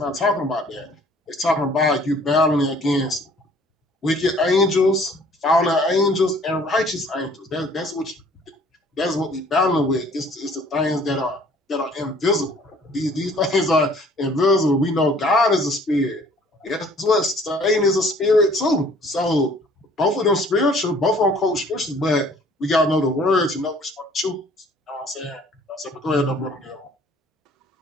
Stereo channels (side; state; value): both; normal; correlation 0.56